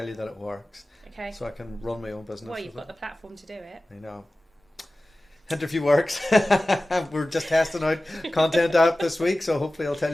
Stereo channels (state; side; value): normal; both; correlation 0.96